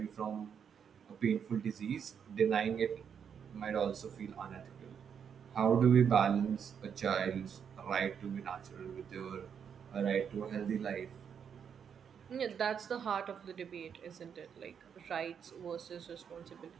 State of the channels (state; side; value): quieter; left; 7.5 dB